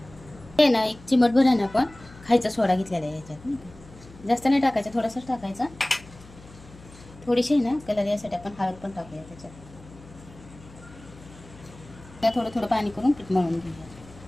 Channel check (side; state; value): left; noise; hum, 21 dB below the sound